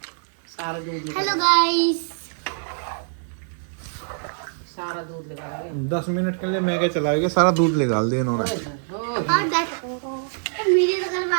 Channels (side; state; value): left; silent; digital silence